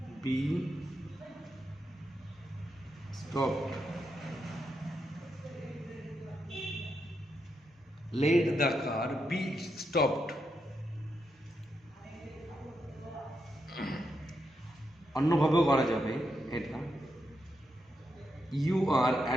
be stopped, let the car be stopped। অন্যভাবেও করা যাবে এটা, you are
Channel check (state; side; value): normal; both; correlation 0.83